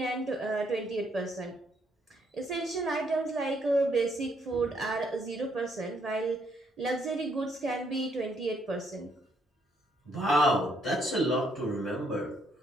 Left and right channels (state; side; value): normal; both; correlation 0.71